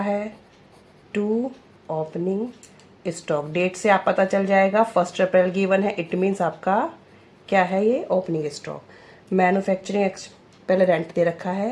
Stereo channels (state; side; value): identical; both; correlation 1.00